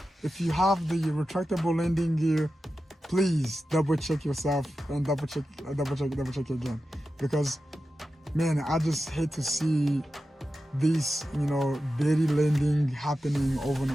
If you have the retractable landing gear, please double check yourself and double check again, because man, I just hate to see this belly landing happening over and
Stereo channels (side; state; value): both; normal; correlation 0.92